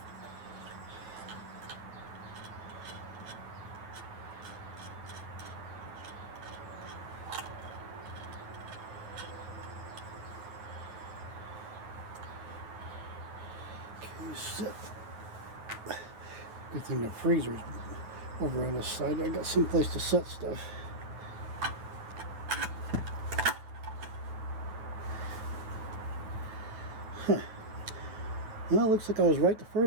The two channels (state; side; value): late; left; 9.2 ms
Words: Okay, sit. Good thing the freezer's over on this side. I got some place to set stuff. Huh. Well, it looks like I was right the